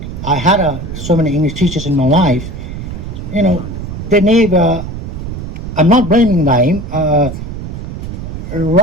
I had so many English teachers in my life, they never, I'm not blaming them,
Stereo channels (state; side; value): noise; right; rumble, 7 dB below the sound